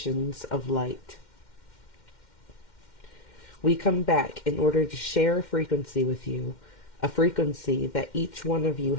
of light. We come back in order to share a frequency with you, a frequency that each one of you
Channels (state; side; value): late; right; 2.1 ms